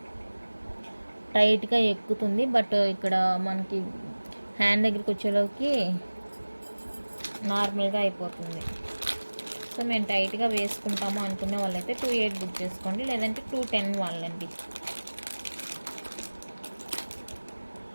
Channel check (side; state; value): both; inverted; correlation -1.00